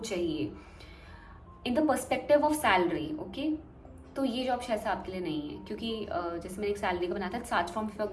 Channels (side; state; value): both; identical; correlation 1.00